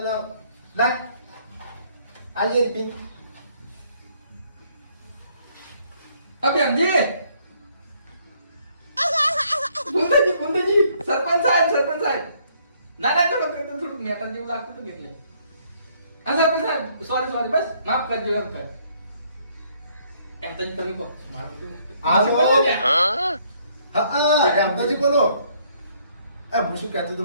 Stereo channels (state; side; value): inverted; both; correlation -0.66